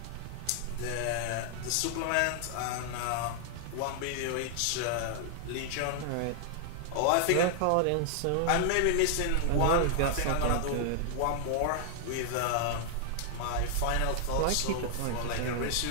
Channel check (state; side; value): different; both; correlation 0.00